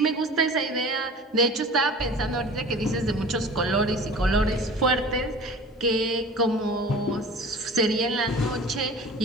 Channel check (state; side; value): normal; both; correlation 0.40